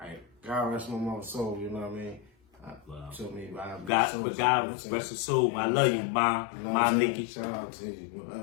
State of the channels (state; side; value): drops out; right; at 3.9 s